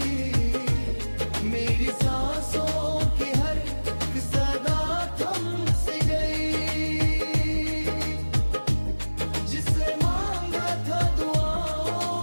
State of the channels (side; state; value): both; inverted; correlation -1.00